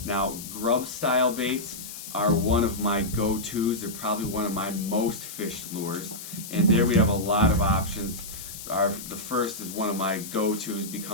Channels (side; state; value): left; noise; hiss, 11 dB below the sound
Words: Now grub style baits are one of my go-tos. They're probably one of my most fished lures. And there we have a lot of options. The first is one of my go-tos,